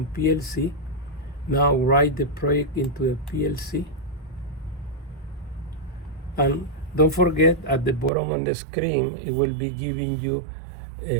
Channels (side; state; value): left; drops out; at 8.1 s